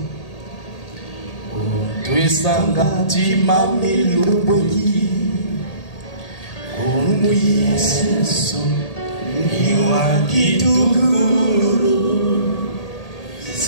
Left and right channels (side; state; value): right; late; 1.8 ms